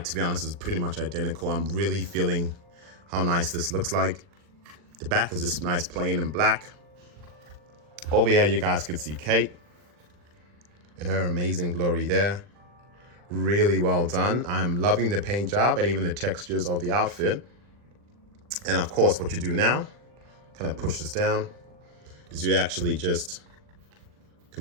to be honest, is pretty much identical. I'm really feeling how nice this looks like. The back is just nice, plain and black. Over here, you guys can see Kate in her amazing glory there. Really well done. I'm loving the paint job and even the textures of the outfit. And of course, what you do now, kind of push this down, is you actually just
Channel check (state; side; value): late; left; 40 ms